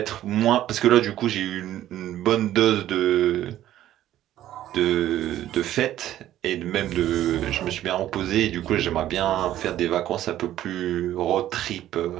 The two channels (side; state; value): left; quieter; 12.9 dB